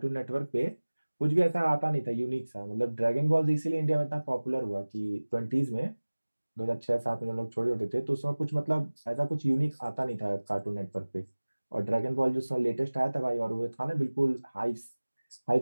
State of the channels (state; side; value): inverted; both; correlation -1.00